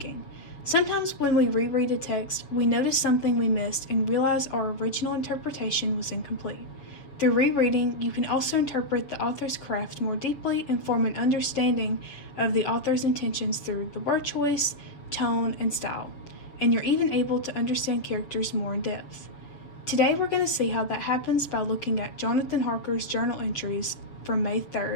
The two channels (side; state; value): right; late; 7.1 ms